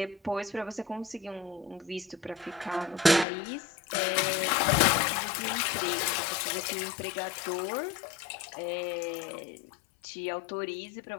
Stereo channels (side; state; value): right; drops out; at 3.2 s